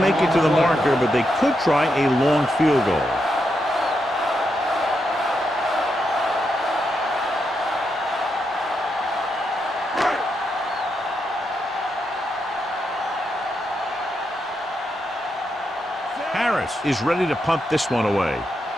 it to the marker, but they could try a long field goal. Harris is ready to punt this one away.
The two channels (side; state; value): both; normal; correlation 0.83